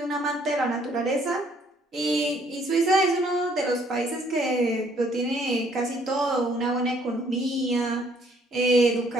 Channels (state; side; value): normal; both; correlation 0.64